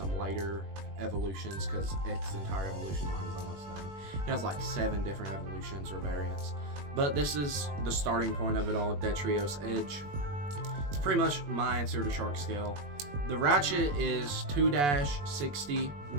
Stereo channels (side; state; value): left; late; 21 ms